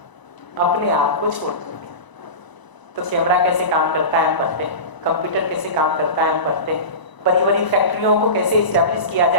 अपने आप को छोड़ करके। तो कैमरा कैसे काम करता है हम पढ़ते हैं, कंप्यूटर कैसे काम करता है हम पढ़ते हैं, बड़ी बड़ी फैक्ट्रियों को कैसे इस्टेब्लिश किया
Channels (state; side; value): late; right; 1.0 ms